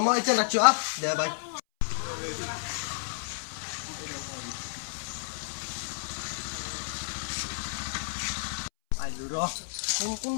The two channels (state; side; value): silent; right; 57 dB below the other